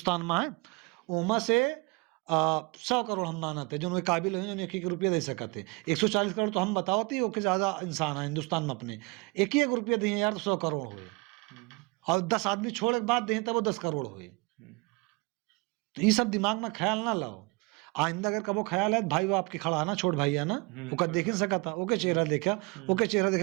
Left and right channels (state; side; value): quieter; left; 26.4 dB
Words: में है। उमा से 100 करोड़ हम मानते हैं जो उनके काबिल हैं, जो 1 रुपया दे सकते। 140 करोड़ तो हम बताओ थी, ओके ज्यादा इंसान है हिंदुस्तान में अपने, 1 रुपया दिए यार तो 100 करोड़ हुए, और 10 आदमी छोड़ के बाद दें तब वो 10 करोड़ हुए। तो ये सब दिमाग में ख्याल ना लाओ। आइंदा अगर कबो ख्याल है, भाई वो आपके खड़ा है ना, छोट भाई है ना, ओका देख ही सका था, ओके चेहरा देखा, ओके चेहरा